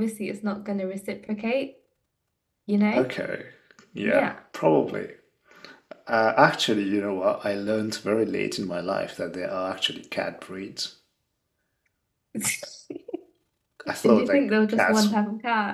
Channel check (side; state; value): both; identical; correlation 1.00